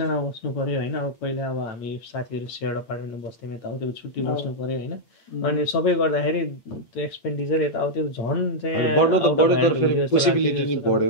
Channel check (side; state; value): right; late; 8.6 ms